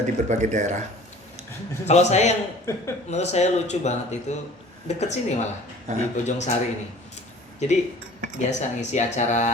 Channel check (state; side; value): normal; both; correlation 0.47